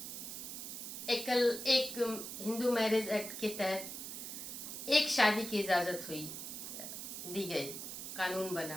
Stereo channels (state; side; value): noise; right; hiss, 7 dB below the sound